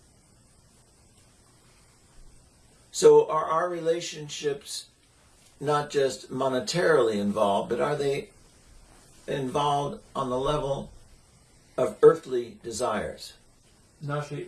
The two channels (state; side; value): identical; both; correlation 1.00